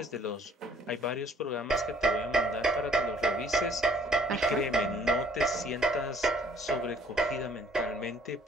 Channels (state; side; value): normal; both; correlation 0.59